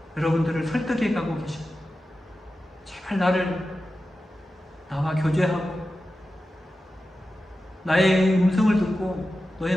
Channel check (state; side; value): normal; both; correlation 0.93